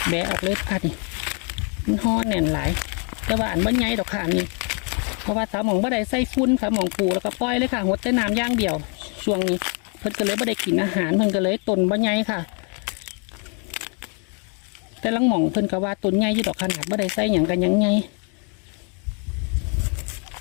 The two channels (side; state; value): right; quieter; 37.9 dB